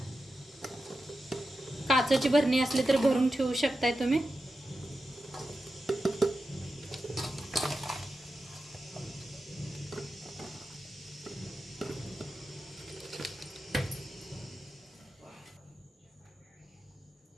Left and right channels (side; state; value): both; normal; correlation 0.91